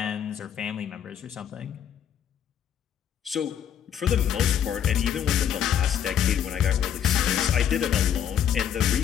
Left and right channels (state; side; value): quieter; right; 9.2 dB